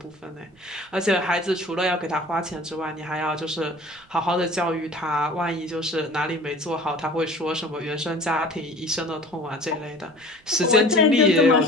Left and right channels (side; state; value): right; noise; rumble, 30 dB below the sound